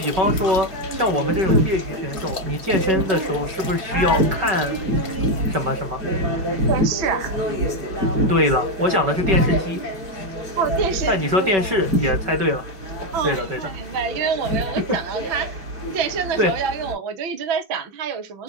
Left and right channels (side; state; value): left; late; 5.3 ms